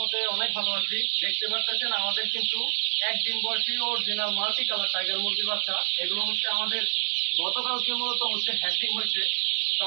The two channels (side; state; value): left; silent; digital silence